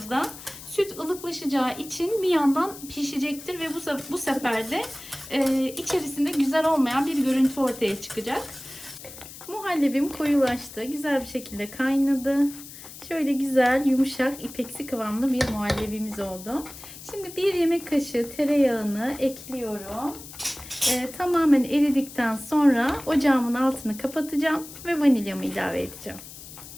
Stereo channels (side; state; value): left; noise; hiss, 15 dB below the sound